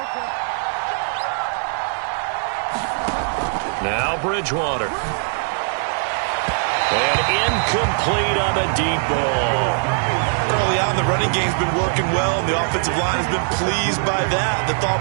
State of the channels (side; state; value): left; silent; 65 dB below the other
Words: Now Bridgewater. And incomplete on the deep ball. Early on, the running game's been working well, and the offensive line has been pleased by that. The